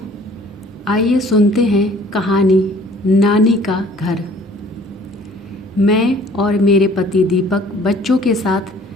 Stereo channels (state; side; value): normal; both; correlation 0.53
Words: आइए सुनते हैं कहानी नानी का घर। मैं और मेरे पति दीपक बच्चों के साथ